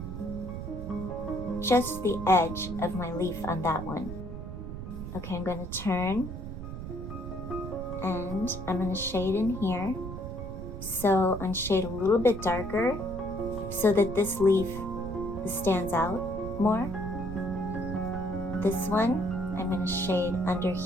just the edge of my leaf on that one. Okay, I'm going to turn and I'm going to shade in here. So I'm shade a little bit darker so that this leaf stands out more. This one I'm going to shade under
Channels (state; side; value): noise; right; rumble, 8 dB below the sound